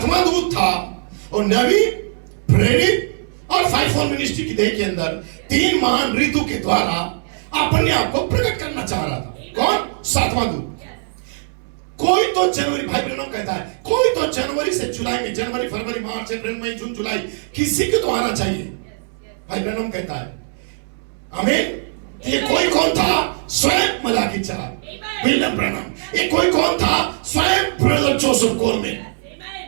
दूत था वो नबी, प्रेरित और 5 मिनिस्ट्री की देह के अंदर 3 महान ऋतु के द्वारा अपने आप को प्रकट करना चाह रहा था। कौन? 7वां दूत। कोई तो जनवरी, भाई ब्रनम कहता है, कोई तो जनवरी से जुलाई में, जनवरी फरवरी मार्च अप्रैल मई जून जुलाई, किसी को तो आना चाहिए। भाई ब्रनम कहता है, आमीन। ये कोई कौन था? स्वयं मलाकी 4, विलियम ब्रनम। ये कोई कौन था? स्वयं ब्रदर जोसेफ कोलमैन।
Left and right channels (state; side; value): silent; left; 66 dB below the other